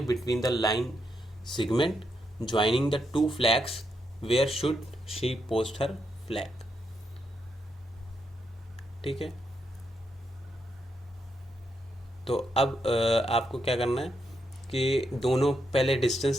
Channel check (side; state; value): both; normal; correlation 0.81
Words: between the line segment joining the two flags, where should she post her flag, ठीक है। तो अब आपको क्या करना है कि दोनों पहले